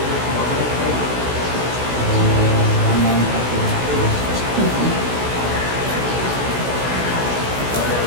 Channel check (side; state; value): left; late; 16 ms